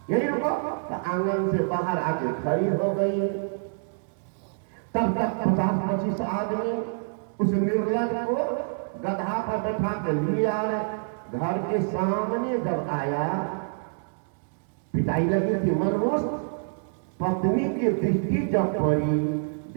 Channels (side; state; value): left; silent; digital silence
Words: यही रुको। तो आंगन से बाहर आके खड़ी हो गई। तब तक 50-25 आदमी उस निर्लज को गधा पर बैठा के लिए आ रहे। घर के सामने जब आया, पिटाई लगी थी मनमोस्त। पत्नी की दृष्टि जब पड़ी,